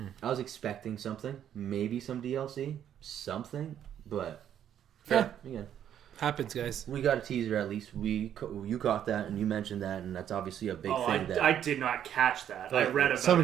I was expecting something. Maybe some DLC. Something. But, again. Happens, guys. We got a teaser at least. You caught that and you mentioned that, and that's obviously a big thing. I did not catch that. I read about it. Some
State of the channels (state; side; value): quieter; left; 10.0 dB